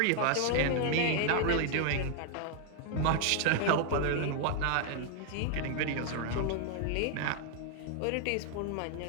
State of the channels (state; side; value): different; both; correlation 0.00